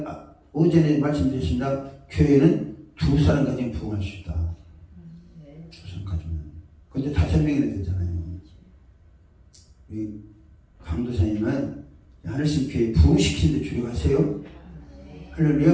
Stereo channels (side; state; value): both; identical; correlation 1.00